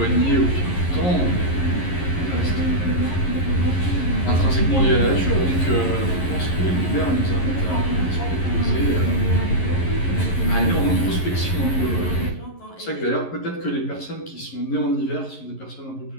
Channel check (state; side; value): late; right; 11 ms